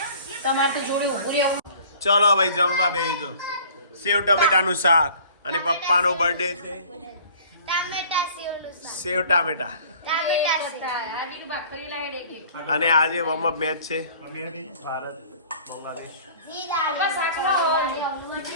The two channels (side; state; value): both; inverted; correlation -0.49